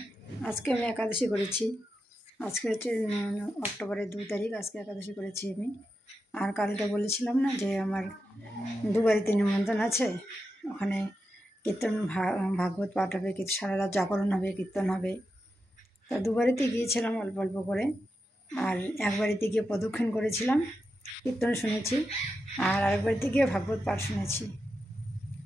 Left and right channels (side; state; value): both; normal; correlation 0.88